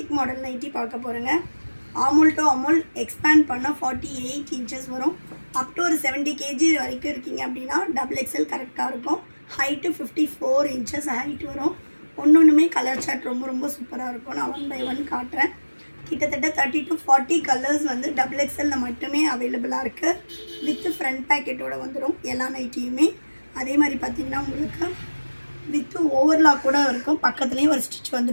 மாடல் நைட்டி பார்க்க போகிறேங்க. ஆமுல் டு அமுல் எக்ஸ்பேண்ட் பண்ணால் 48 இன்ச்சஸ் வரும். அப் டு ஒரு 70 கேஜி வரைக்கும் இருக்கீங்க அப்படின்னா டபுள் எக்ஸல் கரெக்டாக இருக்கும். ஹைட்டு 54 இன்ச்சஸ் ஹைட் வரும். ஒன்றுமே கலர் சார்ட் ரொம்ப சூப்பராக இருக்கும். நான் 1 by 1 காட்டுறேன். கிட்டத்தட்ட 30 to 40 கலர்ஸ் வந்து டபுள் எக்ஸலில் மட்டுமே அவைலபிளாக இருக்குது. வித் ஃப்ரண்ட் பேக்கெட்டோடு வந்துடும் எல்லா நைட்டியுமே. அதே மாதிரி பார்த்திங்கன்னா உங்களுக்கு வித் ஓவர்லாக் கூட இருக்கும். பக்கத்துலேயும் ஒரு ஸ்டிச்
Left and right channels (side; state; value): both; inverted; correlation -1.00